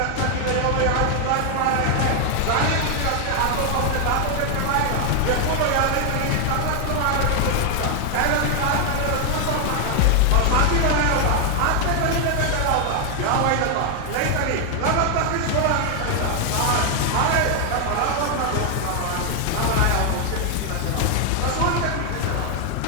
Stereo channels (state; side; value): different; both; correlation 0.00